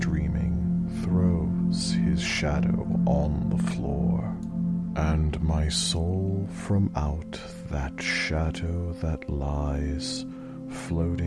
throws his shadow on the floor, and my soul from out that shadow that lies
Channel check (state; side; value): identical; both; correlation 1.00